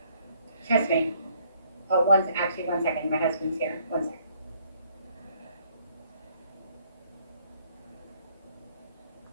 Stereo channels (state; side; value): inverted; both; correlation -0.65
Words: Trust me. Oh, one second. My husband's here. One second.